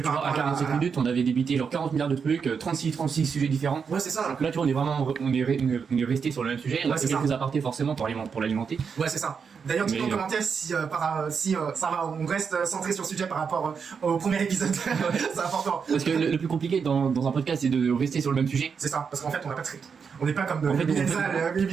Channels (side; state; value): left; quieter; 6.1 dB